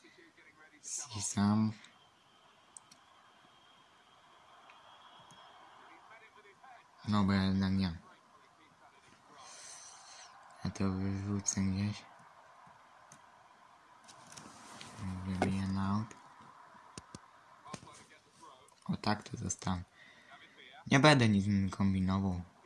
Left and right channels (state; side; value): identical; both; correlation 1.00